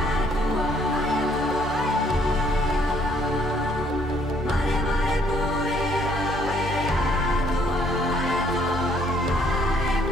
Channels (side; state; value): both; normal; correlation 0.65